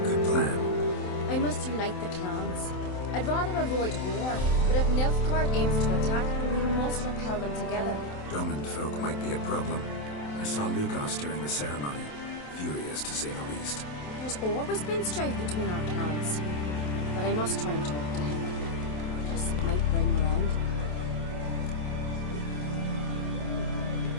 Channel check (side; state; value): right; late; 27 ms